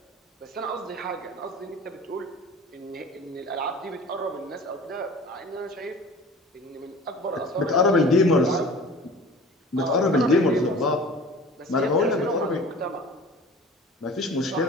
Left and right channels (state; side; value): normal; both; correlation 0.42